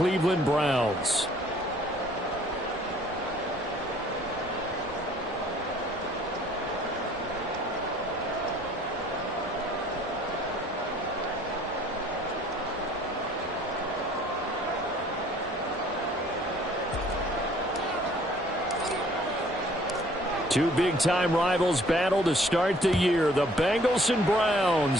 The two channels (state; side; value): normal; both; correlation 0.57